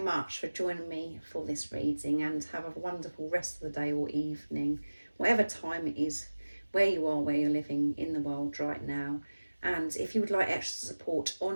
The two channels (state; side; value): inverted; both; correlation -1.00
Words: for joining me for this reading, and have a wonderful rest of the day or evening, whatever time it is, where you are, where you're living in the world right now. And if you would like extra support